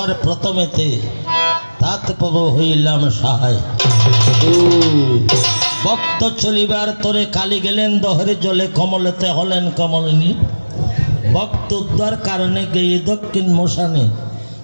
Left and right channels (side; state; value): both; inverted; correlation -1.00